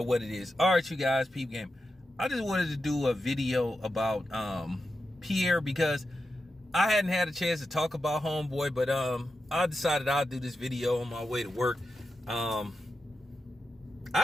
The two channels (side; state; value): both; normal; correlation 0.89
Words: what it is. All right, you guys, peep game. I just wanted to do a video about Pierre because I hadn't had a chance to talk about homeboy, but I decided I'll do this video on my way to work. I